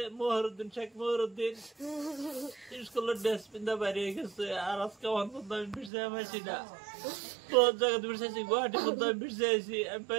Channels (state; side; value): drops out; left; at 5.9 s